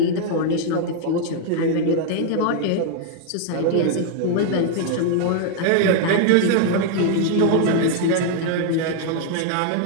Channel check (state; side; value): different; both; correlation 0.00